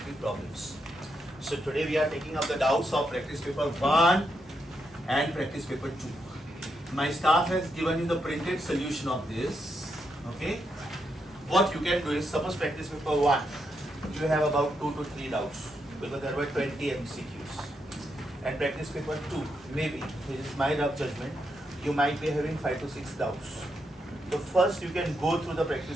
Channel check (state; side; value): normal; both; correlation 0.82